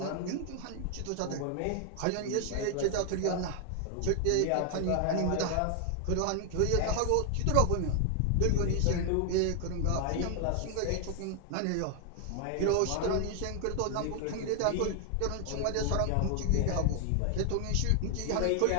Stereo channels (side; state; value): both; different; correlation 0.00